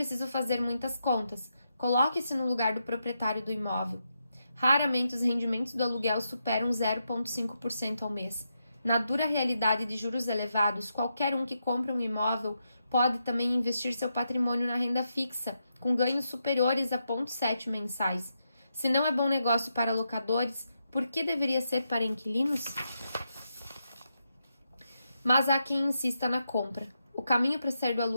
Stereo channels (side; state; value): both; inverted; correlation -0.84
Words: fazer muitas contas. Coloque-se no lugar do proprietário do imóvel. Raramente os rendimentos do aluguel superam 0,5% ao mês. Na dura realidade de juros elevados, qualquer um que compra um imóvel pode também investir seu patrimônio na renda fixa, com ganhos superiores a 0,7 mensais. Se não é bom negócio para locadores, por que deveria ser para inquilinos? Mas há quem insista na compra. O caminho para sair do